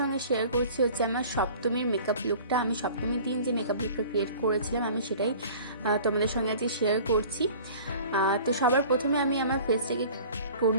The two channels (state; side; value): inverted; both; correlation -0.45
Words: শেয়ার করছি আমার সপ্তমীর মেকআপ লুকটা। আমি সপ্তমীর দিন যে মেকআপ লুকটা ক্রিয়েট করেছিলাম আমি সেটাই তোমাদের সঙ্গে আজকে শেয়ার করছি। তো সবার প্রথমে আমি আমার ফেসটাকে